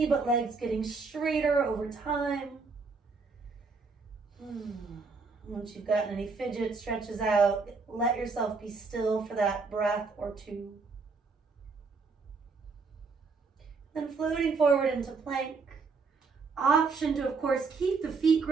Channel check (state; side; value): quieter; left; 4.5 dB